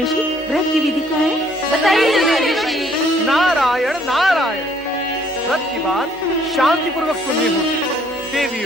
व्रत की विधि क्या है? बताइए देवर्षि। नारायण नारायण। व्रत की बात शांति पूर्वक सुननी होगी।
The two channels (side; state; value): both; normal; correlation 0.63